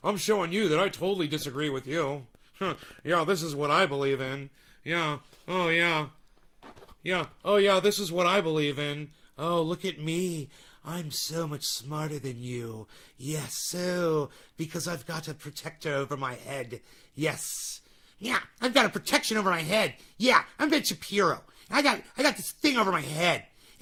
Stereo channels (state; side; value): identical; both; correlation 1.00